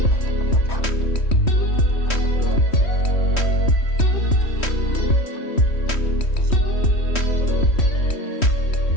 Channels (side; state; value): right; late; 3.1 ms